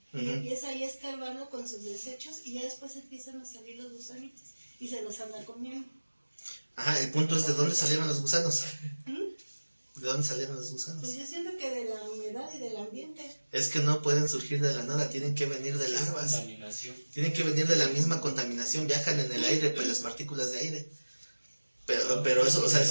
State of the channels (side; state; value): both; inverted; correlation -1.00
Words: Y empieza ahí a escarbarlo con sus desechos y ya después empiezan a salir los gusanitos y se los anda comiendo. Ajá, el punto es de dónde salieron los gusanos. ¿De dónde salieron los gusanos? Pues yo siento que de la humedad y del ambiente. Es que no pueden surgir de la nada, tienen que venir de larvas. Contaminación. Tienen que venir de la misma contaminación, viajan en el aire, pues las partículas de aire. Pero eso, o sea,